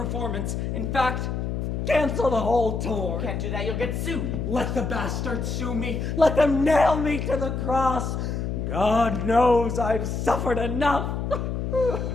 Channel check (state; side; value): noise; left; hum, 2 dB below the sound